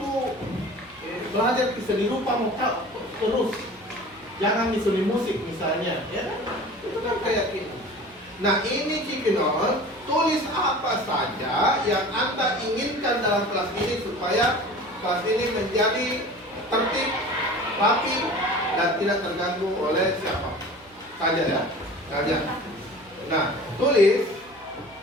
belajar ke seni rupa mau terus. Jangan di seni musik misalnya, ya kan? Itu kan kayak gitu. Nah ini Cipinon, tulis apa saja yang Anda inginkan dalam kelas ini supaya kelas ini menjadi tertib, rapi, dan tidak terganggu oleh siapa saja ya. Saja. Nah, tulis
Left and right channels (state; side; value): noise; right; hum, 28 dB below the sound